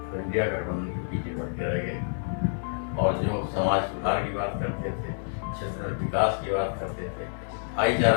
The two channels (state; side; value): silent; right; 59 dB below the other